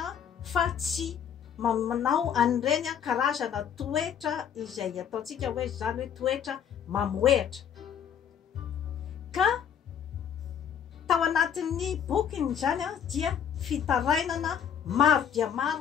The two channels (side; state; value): right; quieter; 8.3 dB